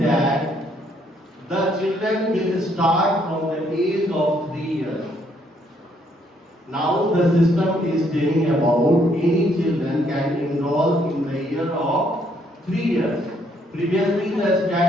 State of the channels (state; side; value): normal; both; correlation 0.69